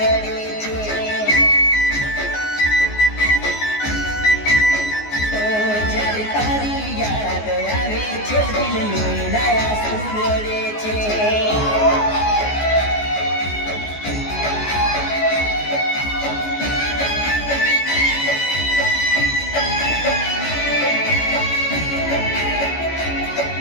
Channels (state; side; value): late; right; 14 ms